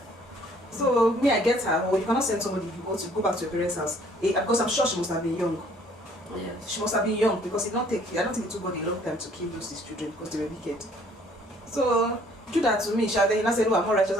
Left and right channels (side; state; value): both; normal; correlation 0.59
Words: So me, I get her. Or you cannot send somebody if you want to go back to your parents' house. Because I'm sure she must have been young. Yes. She must have been young because I don't think it took God a long time to kill those his children because they were wicked. So Judah to me, then he now said, "Oh, I'm more righteous."